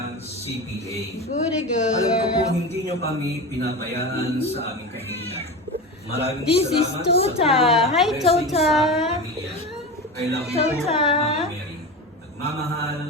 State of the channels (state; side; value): normal; both; correlation 0.25